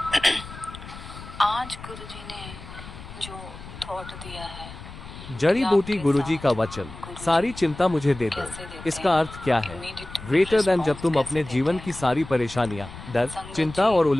आज गुरु जी ने जो थॉट दिया है, जड़ी बूटी गुरुजी का वचन, सारी चिंता मुझे दे दो। इसका अर्थ क्या है? ग्रेटर देन जब तुम अपने जीवन की सारी परेशानियां, डर, चिंता और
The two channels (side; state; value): left; noise; rumble, 14 dB below the sound